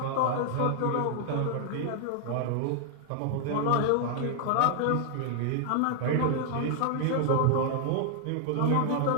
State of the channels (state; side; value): different; both; correlation 0.00